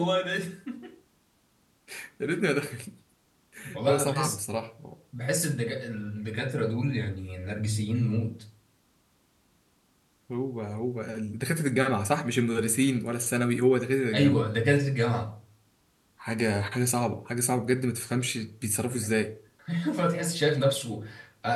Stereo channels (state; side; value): identical; both; correlation 1.00